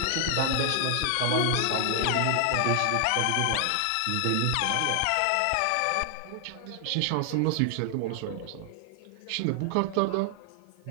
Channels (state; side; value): different; both; correlation 0.00